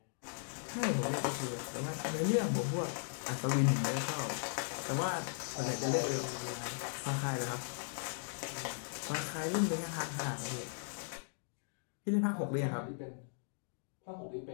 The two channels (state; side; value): silent; right; digital silence